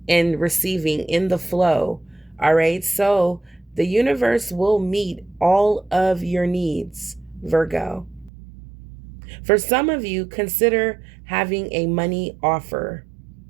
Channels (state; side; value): drops out; left; at 8.3 s